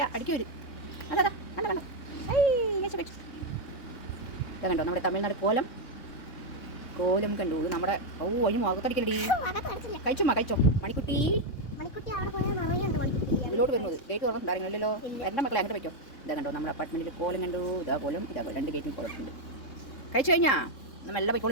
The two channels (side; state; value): right; late; 3.6 ms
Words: അടിക്ക് വരും. അതാ കണ്ടോ ഐ കഴിച്ചു. ഇതാ കണ്ടോ നമ്മുടെ തമിഴ്നാട് കോലം കണ്ടു. നമ്മുടെ അതിന് മുഖത്തടിക്കലടി. കഴിച്ചോ മണിക്കുട്ടി. ഇതിലോട്ട് വരുന്നത് ഗേറ്റ് തുറന്നിട്ടുണ്ടായിരുന്നല്ലോ. എൻ്റെ മക്കളെ അങ്ങോട്ട് വയ്ക്കോ. ഇതാ കണ്ടോ നമ്മുടെ അപ്പാർട്ട്മെൻറ്റിൽ കോലം കണ്ടു. ഇതാ കോലം 2 ഗേറ്റിൽ കോലത്തുണ്ട്. കഴിച്ചു കഴിഞ്ഞാൽ നമ്മൾ എല്ലാം